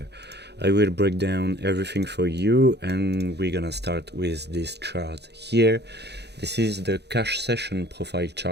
I will break down everything for you, and we're gonna start with this chart here. This is the cash session profile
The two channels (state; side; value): late; left; 0.49 ms